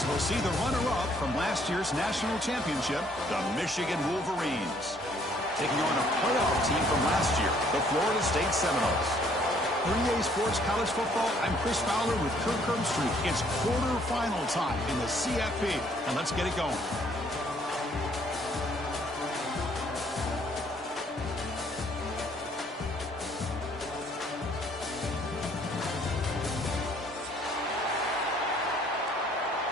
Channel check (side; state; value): both; normal; correlation 0.63